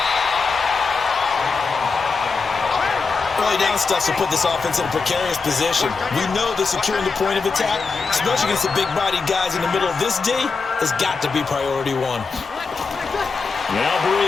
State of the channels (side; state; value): right; quieter; 4.6 dB